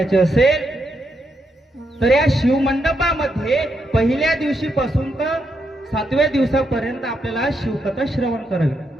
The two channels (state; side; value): normal; both; correlation 0.80